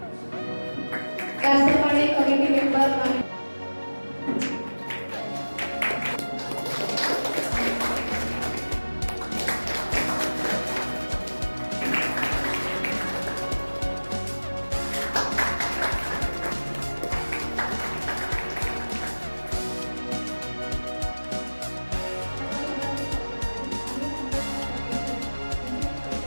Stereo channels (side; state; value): both; inverted; correlation -1.00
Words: त्याचप्रमाणे कमिटी मेंबर